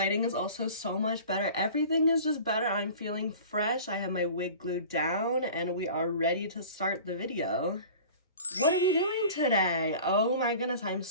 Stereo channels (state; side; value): inverted; both; correlation -0.41